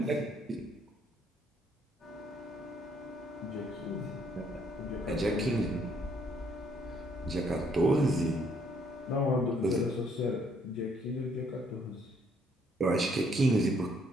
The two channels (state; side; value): normal; both; correlation 0.67